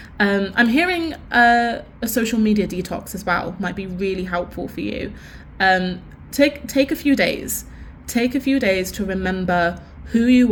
I'm hearing a social media detox as well. Might be really helpful for you. Take a few days. Take a few days to remember who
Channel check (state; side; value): identical; both; correlation 1.00